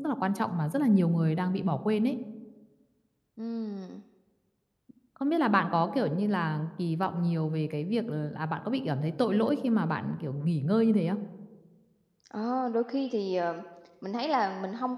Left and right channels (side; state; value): both; identical; correlation 1.00